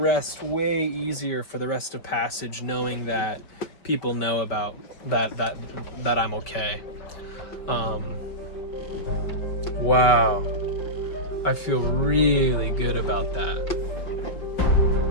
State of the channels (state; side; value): late; right; 5.4 ms